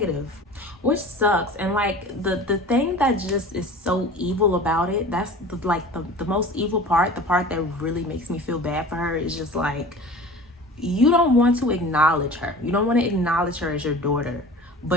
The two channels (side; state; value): both; normal; correlation 0.39